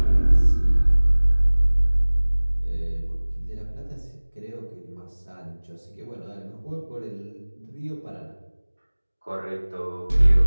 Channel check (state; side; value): inverted; both; correlation -1.00